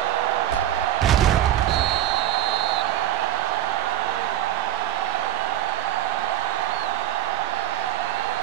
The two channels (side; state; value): left; quieter; 12.0 dB